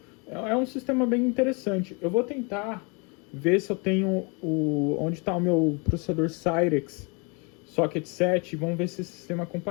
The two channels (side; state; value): right; quieter; 32.2 dB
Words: é um sistema bem interessante. Eu vou tentar ver se eu tenho onde está o meu processador Cyrex Socket 7, vamos ver se esse sistema é